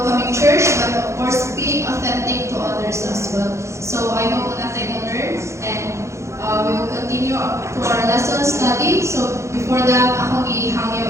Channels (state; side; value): late; left; 0.14 ms